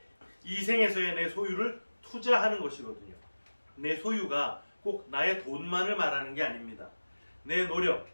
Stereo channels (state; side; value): inverted; both; correlation -1.00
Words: 이 생에서의 내 소유를 투자하는 것이거든요. 내 소유가 꼭 나의 돈만을 말하는 게 아닙니다. 내 노력,